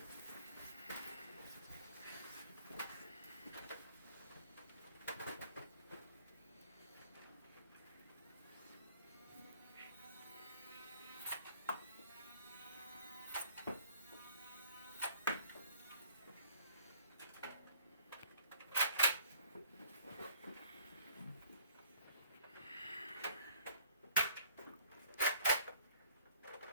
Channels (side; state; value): both; inverted; correlation -0.59